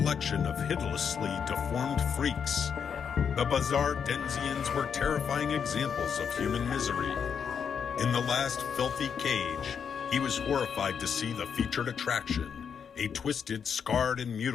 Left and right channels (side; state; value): right; quieter; 7.1 dB